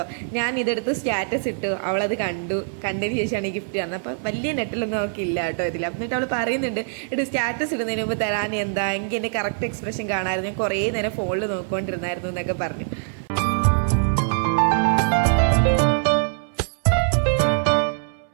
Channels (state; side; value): silent; left; 63 dB below the other